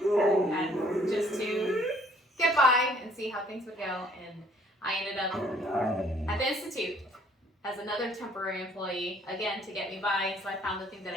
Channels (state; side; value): normal; both; correlation 0.60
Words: and just to get by and see how things would go. And I ended up at the institute as another temporary employee, again, to get me by. So I found the thing that